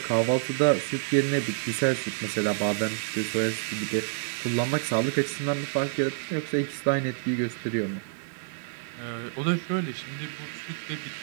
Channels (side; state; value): left; silent; digital silence